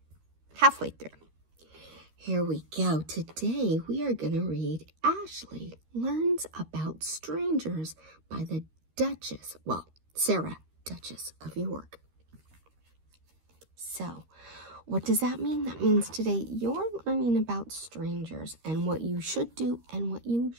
Halfway through. Here we go. Today we are going to read Ashley Learns About Strangers by the Duchess, Sarah, Duchess of York. So, what does that mean? That means today you're learning about strangers and what you should do and what you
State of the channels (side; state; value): left; late; 13 ms